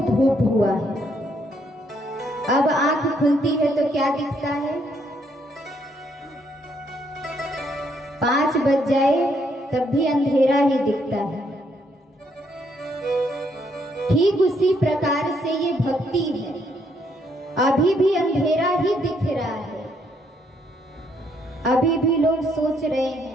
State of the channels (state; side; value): normal; both; correlation 0.71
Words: धूप हुआ है। अब आंख खुलती है तो क्या दिखता है? 5 बज जाए तब भी अंधेरा ही दिखता है। ठीक उसी प्रकार से ये भक्ति है, अभी भी अंधेरा ही दिख रहा है। अभी भी लोग सोच रहे